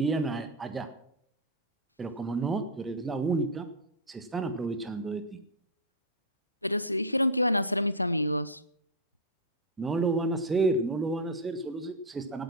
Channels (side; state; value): both; normal; correlation -0.06